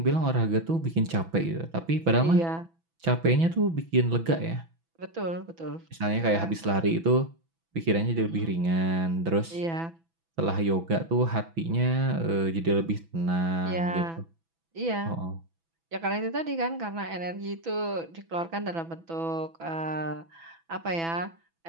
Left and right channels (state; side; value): late; left; 6.0 ms